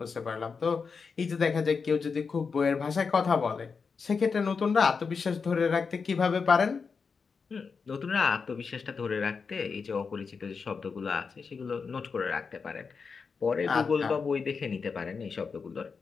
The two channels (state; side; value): quieter; right; 5.3 dB